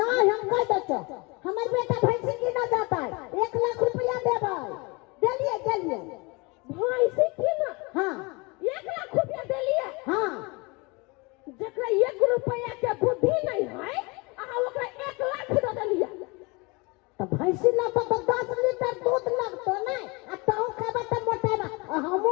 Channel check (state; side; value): quieter; right; 27.3 dB